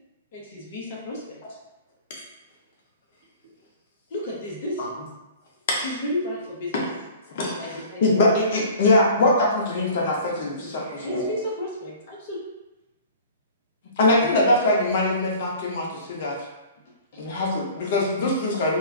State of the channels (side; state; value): both; inverted; correlation -0.46